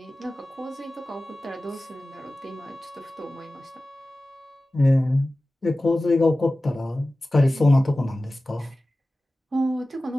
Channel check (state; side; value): normal; both; correlation 0.96